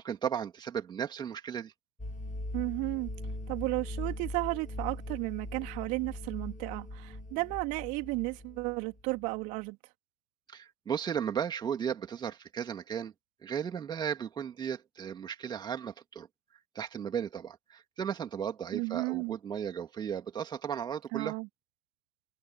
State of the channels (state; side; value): quieter; left; 9.0 dB